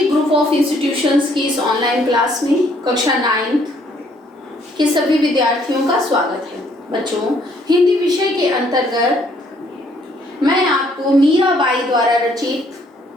group of institutions की इस online class में कक्षा 9 के सभी विद्यार्थियों का स्वागत है। बच्चों, हिंदी विषय के अंतर्गत मैं आपको मीराबाई द्वारा रचित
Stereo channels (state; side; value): normal; both; correlation 0.65